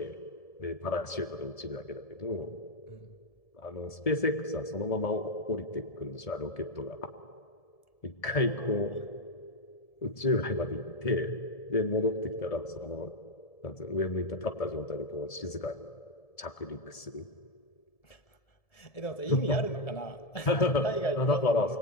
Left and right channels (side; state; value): right; late; 1.7 ms